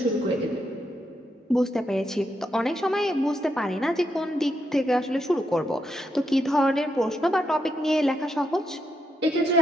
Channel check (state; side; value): normal; both; correlation 0.81